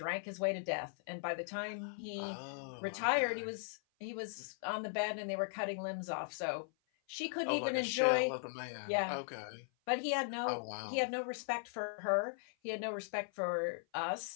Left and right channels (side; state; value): right; silent; 52 dB below the other